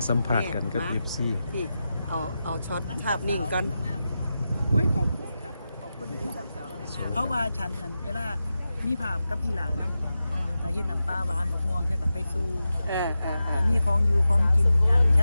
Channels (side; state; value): both; inverted; correlation -0.91